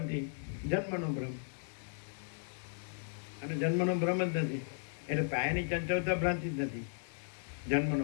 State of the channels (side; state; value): right; silent; digital silence